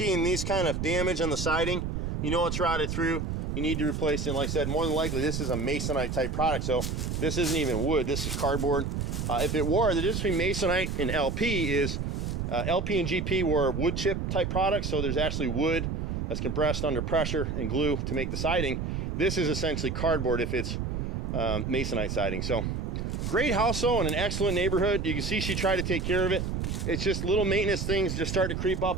these kind of damage on the siding, you know it's rotted through. You need to replace it. And like I said, more than likely this is a masonite type product. So this isn't even wood, this is cardboard. If it were, the difference between masonite and LP is LP and GP were wood chip type products. So there's actually wood that's compressed under pressure and glue to make the siding. This is essentially cardboard if it's masonite siding. So great house though, in an excellent neighborhood. You can see she tried to take care of it. It's just little maintenance things just start to creep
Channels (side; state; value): right; noise; rumble, 2 dB below the sound